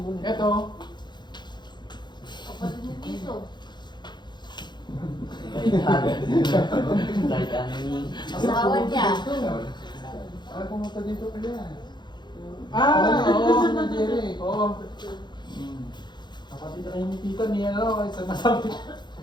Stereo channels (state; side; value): late; right; 0.21 ms